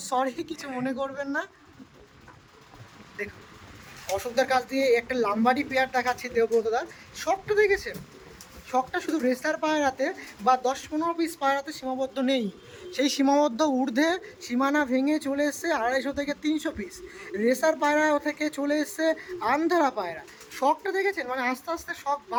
সরি, কিছু মনে করবেন না। দেখুন অশোকদার কাছ দিয়ে একটা লাম্বাডি পেয়ার দেখাচ্ছি দেবব্রতদার। শখটা দেখেছেন? শখটা শুধু রেসার পায়রাতে বা 10-15 পিস পায়রাতে সীমাবদ্ধ নেই, সেই সীমাবদ্ধ ঊর্ধ্বে সীমানা ভেঙে চলে এসছে 250 থেকে 300 পিস রেসার পায়রা থেকে চলে এসছে আন্ধ্রা পায়রা। শখটা দেখেছেন? মানে আস্তে আস্তে শখ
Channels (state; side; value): identical; both; correlation 1.00